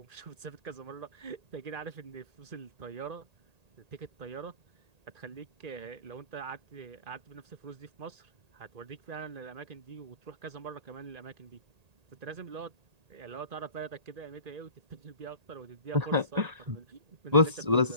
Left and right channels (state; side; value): late; left; 1.8 ms